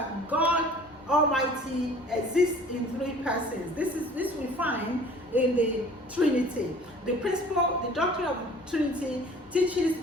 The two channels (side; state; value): both; normal; correlation 0.49